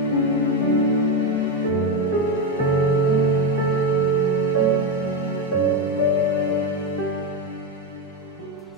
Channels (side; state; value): both; normal; correlation 0.10